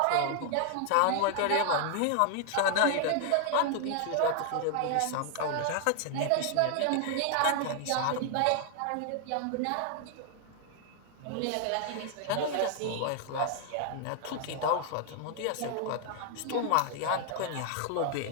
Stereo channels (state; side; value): different; both; correlation 0.00